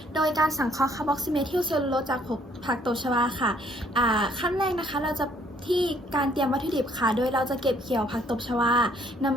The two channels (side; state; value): both; normal; correlation 0.64